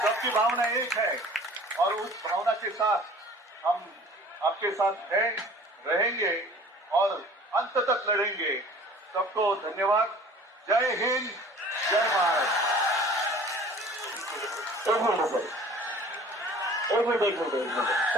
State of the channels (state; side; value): normal; both; correlation 0.48